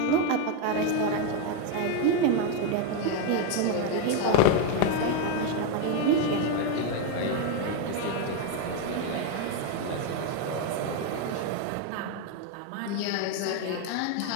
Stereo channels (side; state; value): both; different; correlation 0.02